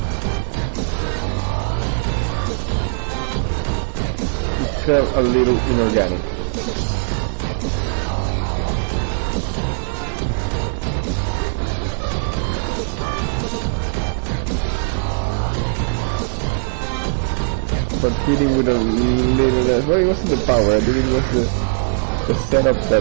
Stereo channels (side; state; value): left; silent; digital silence